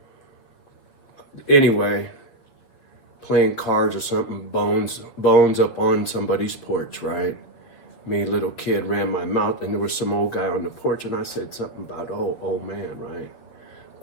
Anyway, playing cards or something, bones up on somebody's porch, right? Me, little kid, ran my mouth, and there was some old guy on the porch, and I said something about, oh, old man, right?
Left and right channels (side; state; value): right; late; 7.7 ms